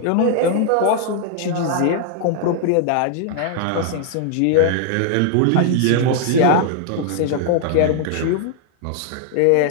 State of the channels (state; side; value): different; both; correlation 0.00